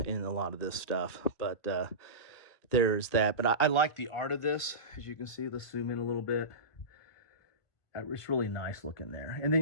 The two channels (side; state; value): right; late; 1.9 ms